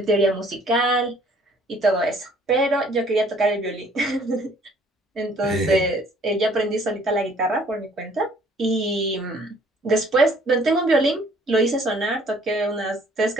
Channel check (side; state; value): both; normal; correlation 0.58